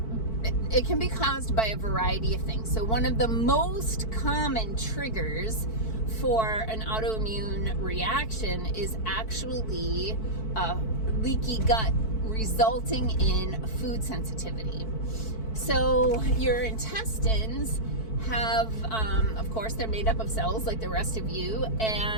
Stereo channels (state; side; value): late; right; 4.6 ms